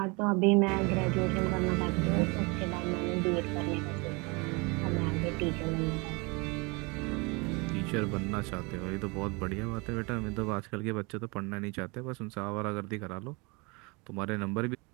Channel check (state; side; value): quieter; left; 28.5 dB